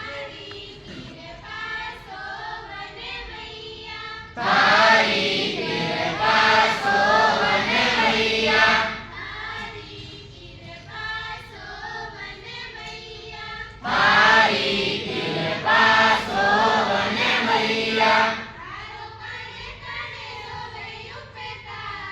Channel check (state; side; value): identical; both; correlation 1.00